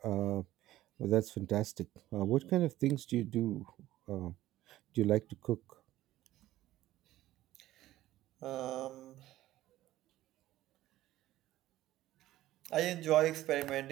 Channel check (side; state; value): left; quieter; 15.0 dB